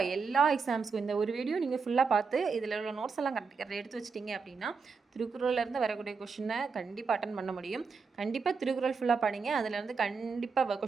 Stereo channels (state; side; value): quieter; left; 5.1 dB